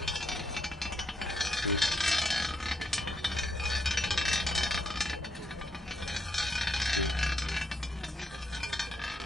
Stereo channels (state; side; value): normal; both; correlation 0.77